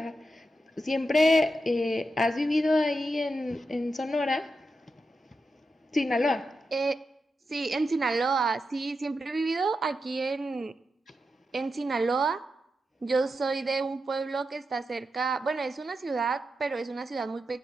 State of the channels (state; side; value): normal; both; correlation 0.88